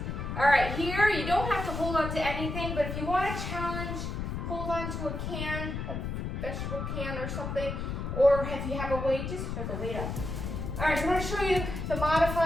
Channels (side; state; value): left; noise; rumble, 4 dB below the sound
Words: All right, here, you don't have to hold on to anything, but if you want a challenge, hold on to a can, a vegetable can or something, or if you have a weight, just hold the weight up. All right, so I'm gonna show you the